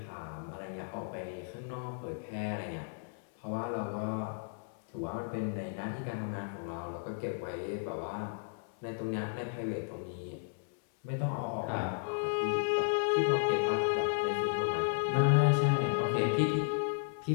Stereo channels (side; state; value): right; silent; 55 dB below the other